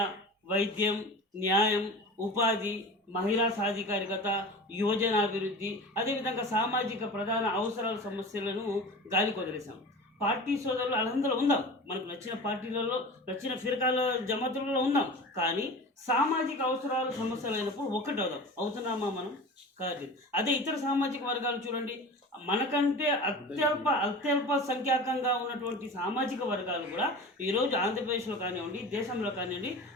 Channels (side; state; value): both; normal; correlation 0.34